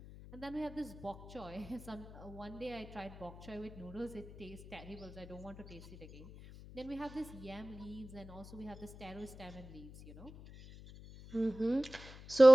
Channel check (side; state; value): left; noise; hum, 15 dB below the sound